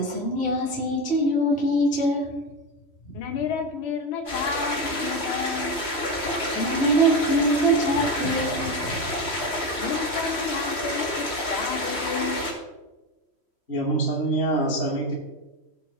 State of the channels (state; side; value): late; right; 3.1 ms